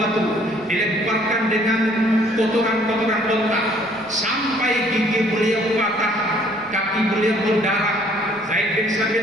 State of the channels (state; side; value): noise; right; rumble, 29 dB below the sound